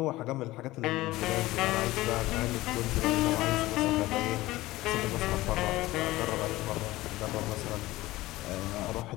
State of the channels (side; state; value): right; quieter; 18.0 dB